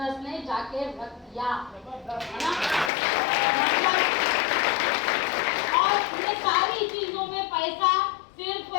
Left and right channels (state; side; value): drops out; right; at 2.9 s